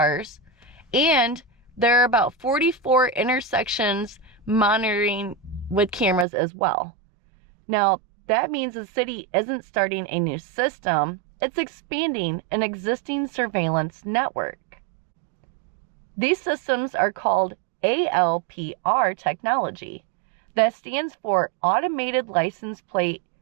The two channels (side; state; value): left; drops out; at 6.2 s